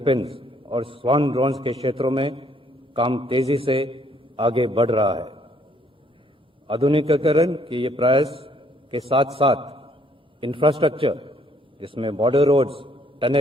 और स्वान ड्रोन्स के क्षेत्रों में काम तेजी से आगे बढ़ रहा है। आधुनिकीकरण के ये प्रयास के साथ साथ इंफ्रास्ट्रक्चर, जिसमें बॉर्डर रोड्स,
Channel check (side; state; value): both; normal; correlation 0.66